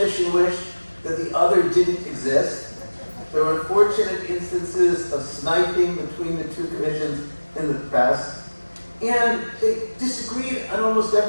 wished that the other didn't exist. There were unfortunate instances of sniping between the two commissions in the press, and they disagreed on almost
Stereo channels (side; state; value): both; inverted; correlation -1.00